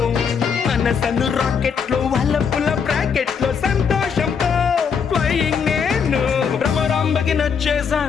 మనసను రాకెట్ లో వల్లపుల బ్రాకెట్ లో సంతోషంతో ఫ్లయింగ్ నేను. భ్రమరాంబకి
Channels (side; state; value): right; quieter; 6.5 dB